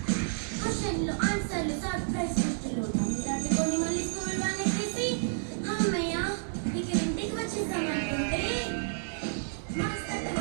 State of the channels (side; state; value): left; silent; digital silence